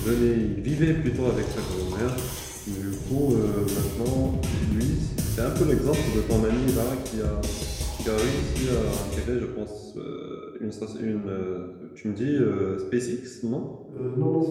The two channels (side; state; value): both; identical; correlation 1.00